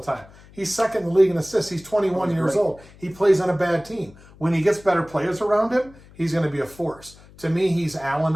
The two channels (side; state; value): left; noise; hum, 23 dB below the sound